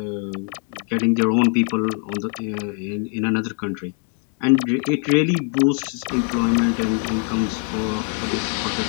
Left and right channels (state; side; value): quieter; right; 38.4 dB